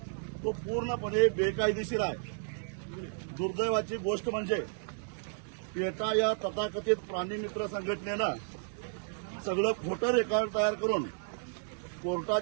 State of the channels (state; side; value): silent; left; digital silence